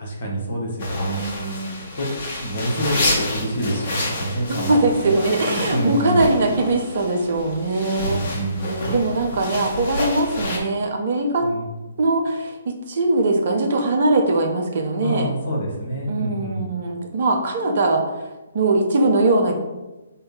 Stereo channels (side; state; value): both; inverted; correlation -0.67